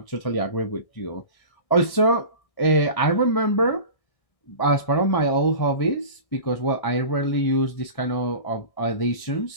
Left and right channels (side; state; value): right; late; 1.6 ms